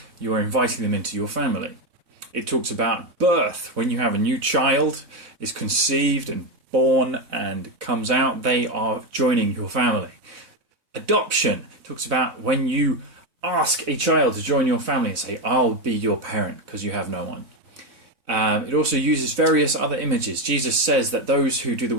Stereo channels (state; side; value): late; left; 3.9 ms